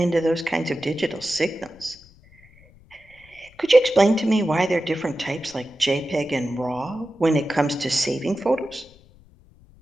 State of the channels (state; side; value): noise; left; rumble, 26 dB below the sound